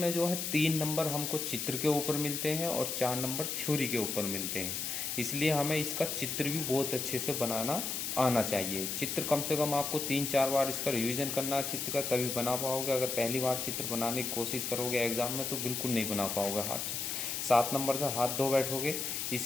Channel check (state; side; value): noise; left; hiss, 2 dB below the sound